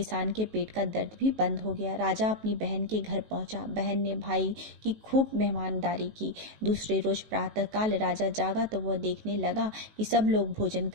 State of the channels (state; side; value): late; left; 19 ms